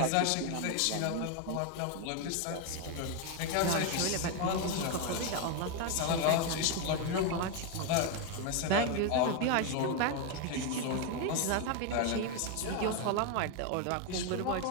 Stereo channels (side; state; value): both; different; correlation 0.01